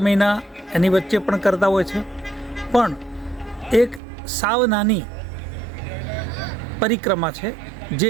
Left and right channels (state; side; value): drops out; left; at 4.0 s